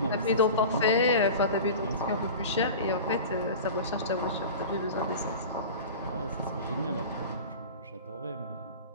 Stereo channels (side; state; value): both; inverted; correlation -0.34